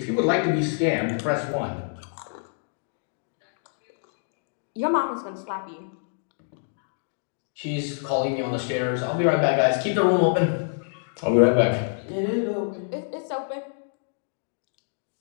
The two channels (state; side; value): silent; right; digital silence